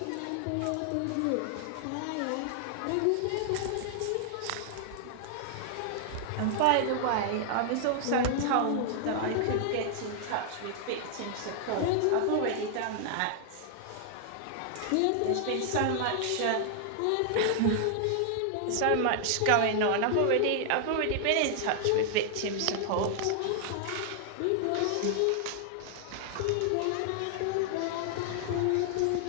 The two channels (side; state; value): both; different; correlation 0.00